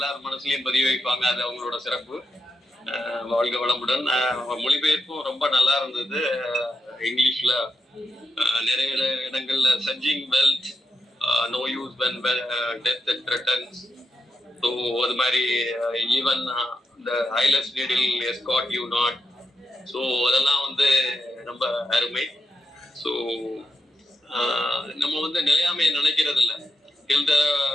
மனசுலயும் பதிவு வைப்பாங்க. அது அவங்களோட சிறப்பு. வாழ்க வளமுடன். மொழிபெயர்ப்பும் ரொம்ப நல்லா இருந்தது. இங்கிலீஷ்ல நிறைய இடங்கள்ல surging wealth no use when death and returns. So அது மாதிரி ஈவன் இந்த eyeless needle escort you not. So அதெல்லாம் வந்து ரொம்ப அருமை. ஸோ நம்ம வந்து நிலையாமையை நினைக்கிறது இல்லை. டில் த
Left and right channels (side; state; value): both; normal; correlation 0.85